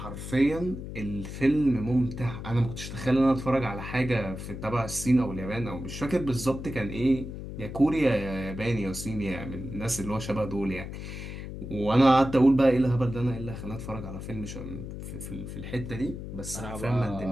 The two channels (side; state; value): left; noise; hum, 9 dB below the sound